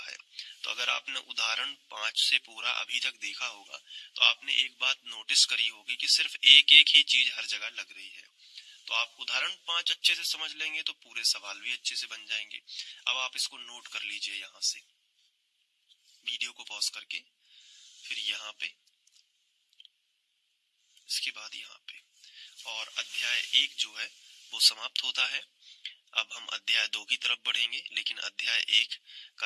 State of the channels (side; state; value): both; identical; correlation 1.00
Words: है। तो अगर आपने उदाहरण 5 से पूरा अभी तक देखा होगा तो आपने एक बात नोटिस करी होगी कि सिर्फ एक एक ही चीज हर जगह लग रही है। तो आप उदाहरण 5 अच्छे से समझ लेंगे तो पूरे सवाल भी अच्छे से बन जाएंगे। अब आप इसको नोट कर लीजिए, यहाँ से वीडियो को पॉज करके, फिर यहाँ पे, इसके बाद यहाँ पे, और अध्याय 1 जो है वो समाप्त होता है। अब हम अध्याय 2 की तरफ बढ़ेंगे, लेकिन अध्याय 1